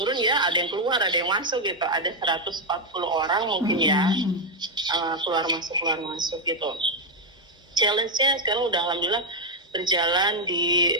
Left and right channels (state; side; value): normal; both; correlation 0.02